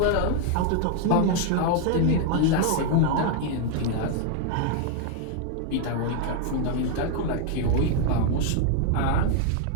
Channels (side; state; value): both; different; correlation 0.00